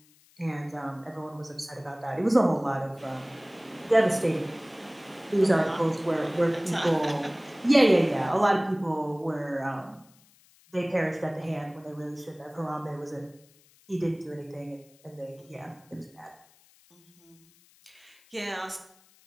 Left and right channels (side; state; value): left; noise; hiss, 30 dB below the sound